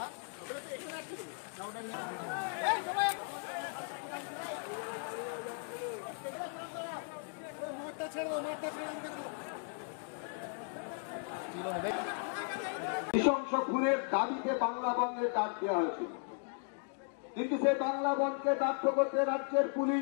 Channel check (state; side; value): silent; right; 53 dB below the other